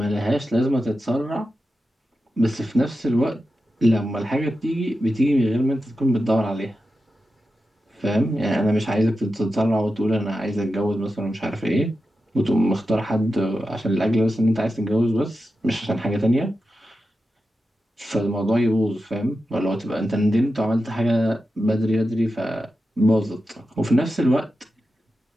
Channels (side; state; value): both; normal; correlation 0.91